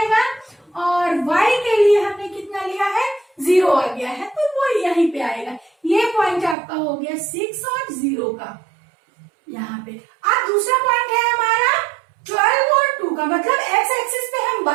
और y के लिए हमने कितना लिया है? 0 आ गया है, तो वो यहीं पे आएगा। ये पॉइंट आपका हो गया 6 और 0 का यहाँ पे। अब दूसरा पॉइंट है हमारा 12 और 2 का, मतलब x एक्सिस पे हम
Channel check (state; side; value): drops out; left; at 6.6 s